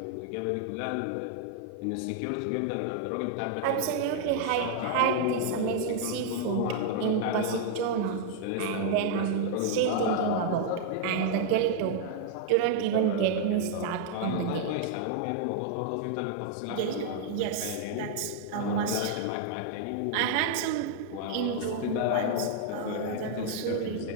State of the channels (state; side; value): different; both; correlation -0.01